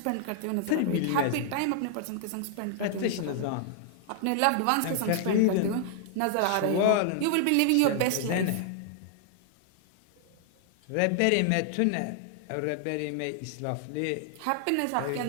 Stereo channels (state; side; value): different; both; correlation -0.01